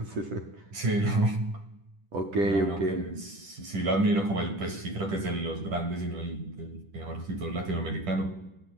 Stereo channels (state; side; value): late; left; 10 ms